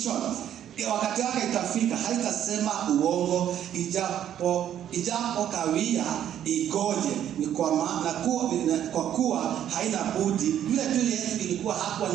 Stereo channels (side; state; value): left; quieter; 10.5 dB